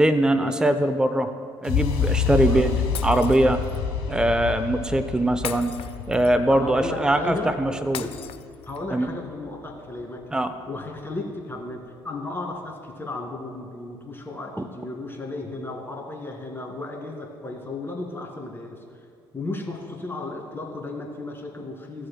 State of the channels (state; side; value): normal; both; correlation 0.78